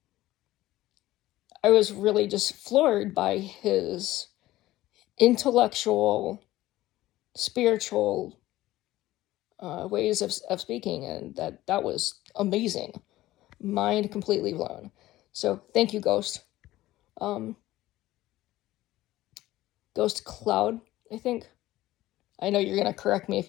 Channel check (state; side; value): quieter; right; 16.2 dB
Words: was really just floored by his intellectual, spiritual ways of speaking, and that was amazing. Mind completely blown. So thank you, Ghost. Um, Ghost Cloud, I think. I know you're gonna correct me if